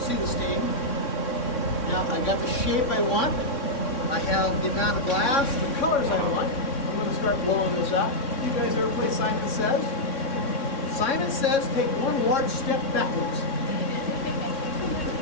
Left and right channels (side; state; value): right; late; 3.6 ms